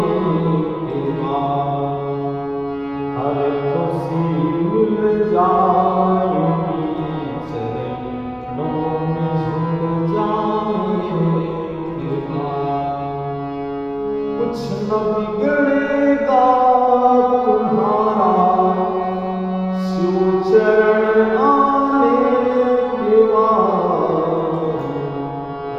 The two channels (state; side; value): identical; both; correlation 1.00